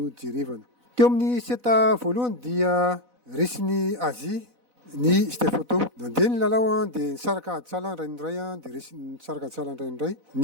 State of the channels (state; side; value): late; left; 4.0 ms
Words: jerevana. Teo amin'ny seta voalohany dia resin'ny Azia ny Stefotô. Nandeha ny lalao dia nisaraka aditsala ray indray dia resy nisaraka aditsala ray indray